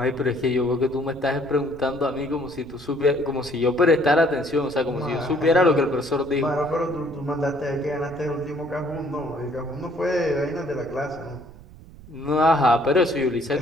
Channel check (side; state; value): right; noise; rumble, 19 dB below the sound